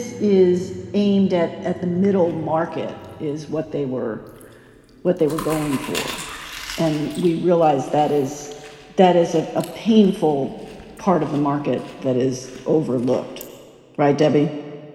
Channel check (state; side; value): identical; both; correlation 1.00